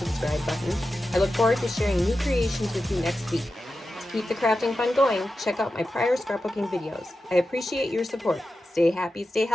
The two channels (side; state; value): both; normal; correlation 0.92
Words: button. I look forward to sharing new creations with you next week. To keep the crafting fun going, check out my prior scrapbooking videos. I appreciate your support. Stay happy, stay